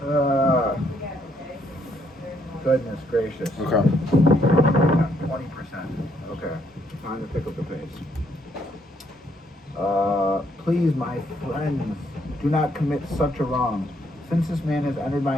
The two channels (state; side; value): normal; both; correlation 0.71